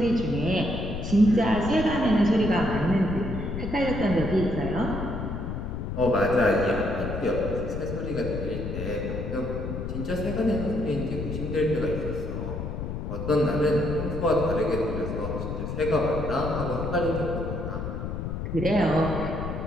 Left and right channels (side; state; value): left; noise; rumble, 5 dB below the sound